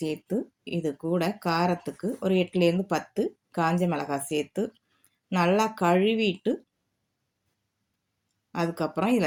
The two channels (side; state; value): both; identical; correlation 1.00